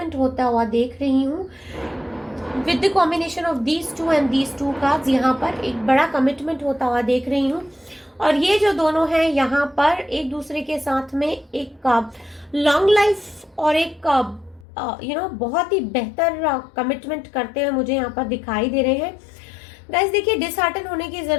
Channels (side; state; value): right; drops out; at 14.7 s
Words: होता हुआ देख रही हूँ। With the combination of these two and these two cards यहाँ पर एक बड़ा कमिटमेंट होता हुआ देख रही हूँ। और ये जो दोनों हैं यहाँ पर एक दूसरे के साथ में एक लॉन्ग लाइफ और एक बहुत ही बेहतर कमिटमेंट करते हुए मुझे यहाँ पर दिखाई दे रहे हैं। गाइस देखिए, डिसहार्टन होने की